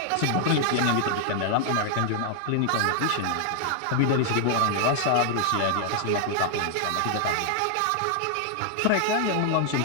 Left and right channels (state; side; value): different; both; correlation 0.00